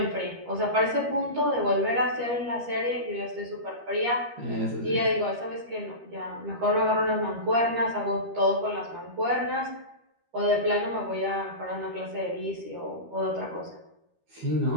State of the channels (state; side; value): late; left; 13 ms